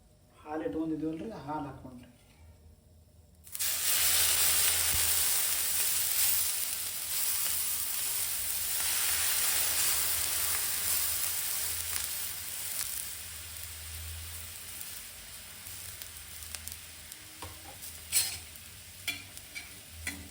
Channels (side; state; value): both; identical; correlation 1.00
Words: ಹಾಲು ಇಟ್ಕೊಂಡಿದ್ದೀವಲ್ರಿ, ಹಾಲು ಹಾಕ್ಕೊಂಡ್ರಿ.